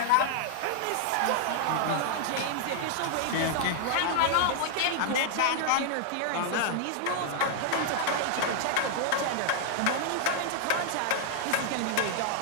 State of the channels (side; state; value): both; different; correlation 0.00